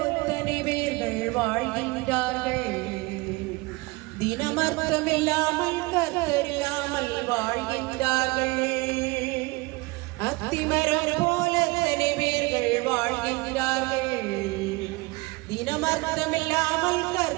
எத்தனை பேர்கள் வாழ்கின்றார்கள். தினமர்த்தமில்லாமல் கர்த்தரில்லாமல் வாழ்கின்றார்கள். அத்திமரம் போல எத்தனை பேர்கள் வாழ்கின்றார்கள். தினமர்த்தமில்லாமல்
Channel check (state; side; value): quieter; left; 24.1 dB